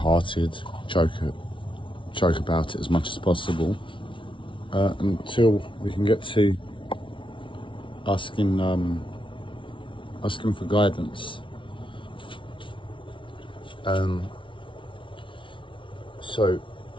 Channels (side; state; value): right; late; 0.25 ms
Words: joke about it as much as possible, until we can get to asking for guidance. So